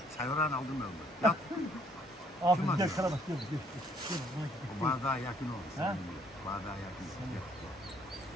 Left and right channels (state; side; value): normal; both; correlation 0.63